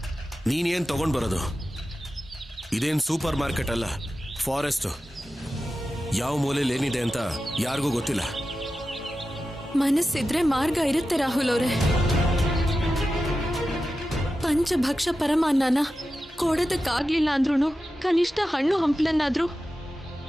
ನೀನೇನ್ ತಗೊಂಡ್ ಬರೋದು? ಇದೇನ್ ಸೂಪರ್ ಮಾರ್ಕೆಟ್ ಅಲ್ಲ, ಫಾರೆಸ್ಟ್. ಯಾವ ಮೂಲೆಯಲ್ಲಿ ಏನಿದೆ ಅಂತ ಯಾರಿಗೂ ಗೊತ್ತಿಲ್ಲ. ಮನಸ್ಸಿದ್ರೆ ಮಾರ್ಗ ಇರುತ್ತೆ ರಾಹುಲ್ ಅವರೇ. ಪಂಚಭಕ್ಷ ಪರಮಾನ್ನನ ಕೊಡೋದಕ್ಕಾಗ್ಲಿಲ್ಲ ಅಂದ್ರೂ ಕನಿಷ್ಠ ಹಣ್ಣು ಹಂಪ್ಲನ್ನಾದ್ರೂ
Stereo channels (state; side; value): normal; both; correlation 0.92